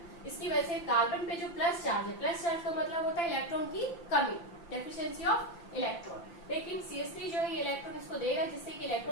इसकी वजह से कार्बन पे जो प्लस चार्ज है, प्लस चार्ज का मतलब होता है इलेक्ट्रॉन की कमी, डेफिशिएंसी ऑफ इलेक्ट्रॉन। लेकिन CH3 जो है ये इलेक्ट्रॉन इसको देगा, जिससे कि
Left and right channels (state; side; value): late; right; 5.8 ms